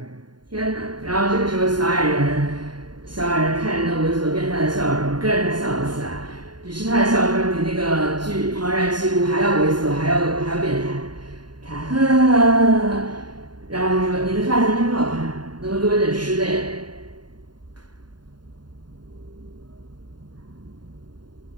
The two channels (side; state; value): left; late; 0.71 ms